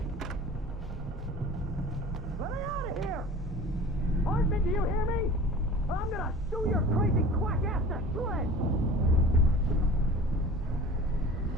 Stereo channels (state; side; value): normal; both; correlation 0.41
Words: Let me out of here! Hartman, do you hear me? I'm gonna sue your crazy quack-ass to shreds!